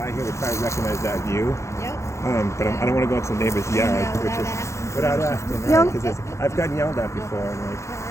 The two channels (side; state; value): right; late; 0.14 ms